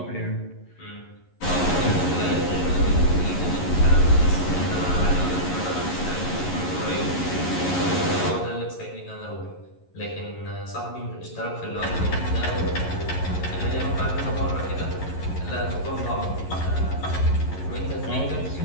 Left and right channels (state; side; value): late; right; 11 ms